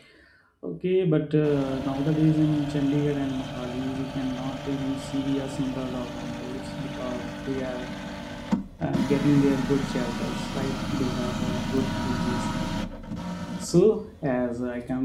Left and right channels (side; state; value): both; identical; correlation 1.00